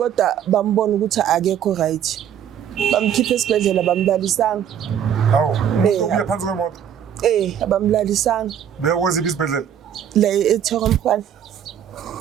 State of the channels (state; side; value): quieter; left; 9.3 dB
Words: bambona ukuthi akekho right bamkhiphe esibhedlela bamlalisanga hawo uya phansi kwemoto abamlalisanga beyokwenziphi isibhedlela la eThokomkhwana